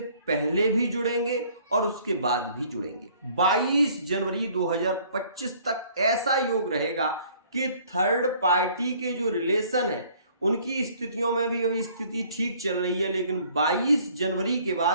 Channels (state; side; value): inverted; both; correlation -0.57